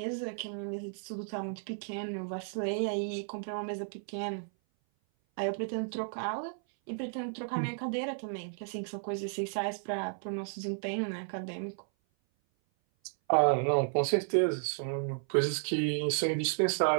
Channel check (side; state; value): left; silent; 56 dB below the other